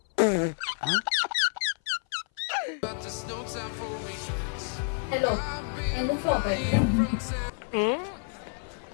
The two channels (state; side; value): silent; right; 57 dB below the other